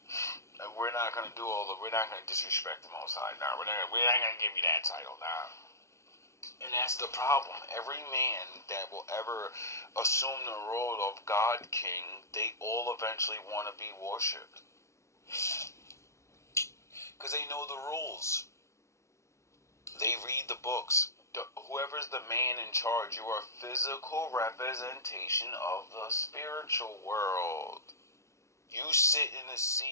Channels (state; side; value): late; right; 0.14 ms